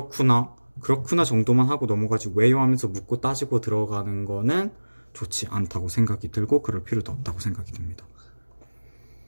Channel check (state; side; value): inverted; both; correlation -1.00